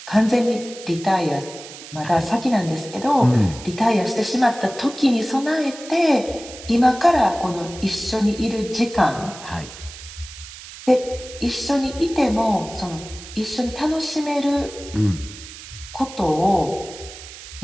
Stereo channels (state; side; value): noise; right; hiss, 15 dB below the sound